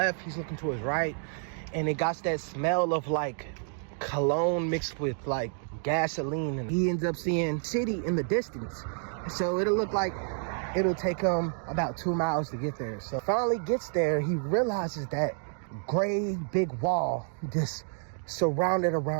he's looking to his right, and it got that smell of like cologne mixed with like gasoline, and he ends up seeing city in the distance. So it'll look like it'll take him about 2 miles to get there. So finally gets there, he realizes that gray big wall just surrounded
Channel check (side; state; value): left; silent; 58 dB below the other